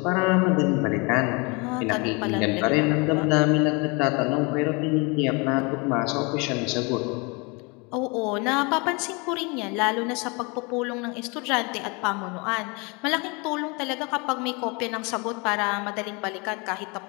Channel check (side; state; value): right; quieter; 29.6 dB